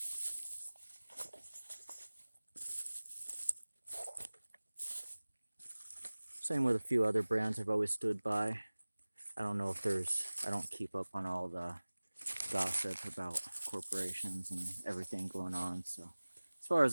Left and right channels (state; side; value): inverted; both; correlation -1.00